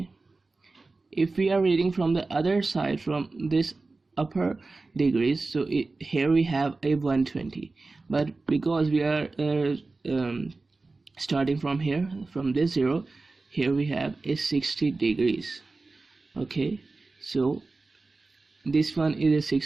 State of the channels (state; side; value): quieter; left; 3.6 dB